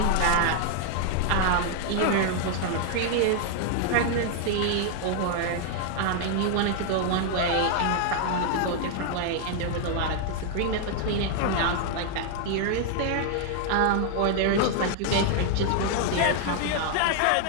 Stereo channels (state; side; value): different; both; correlation 0.00